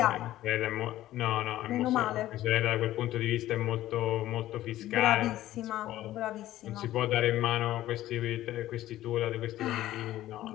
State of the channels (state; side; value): quieter; right; 14.3 dB